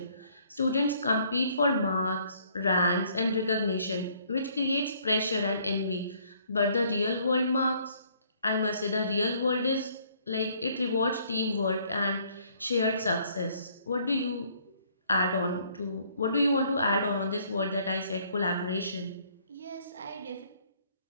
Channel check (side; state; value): both; inverted; correlation -0.63